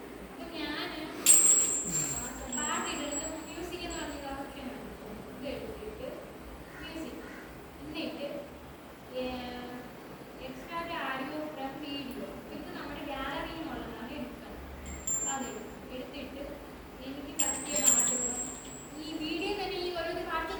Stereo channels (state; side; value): identical; both; correlation 1.00